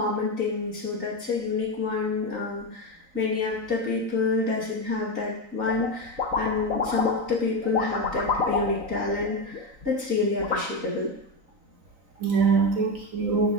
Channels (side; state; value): left; late; 3.9 ms